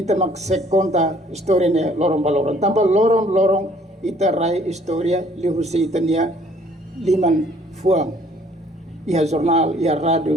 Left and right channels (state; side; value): normal; both; correlation 0.59